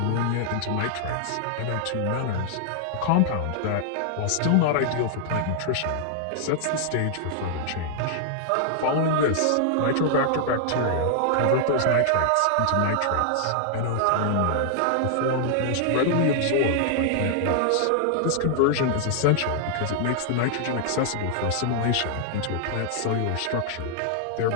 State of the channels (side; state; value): both; different; correlation -0.01